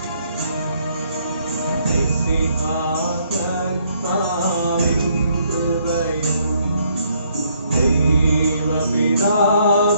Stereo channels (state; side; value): inverted; both; correlation -0.69